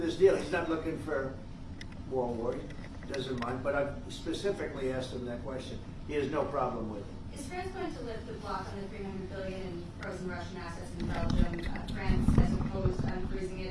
deal, he's not looking for more war. He doesn't mind, but I've specifically asked him that question. He has no problem with it. Is France going to lift the block on the $300 billion in frozen Russian assets in Belgium? France has opposed unfreezing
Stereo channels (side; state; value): both; identical; correlation 1.00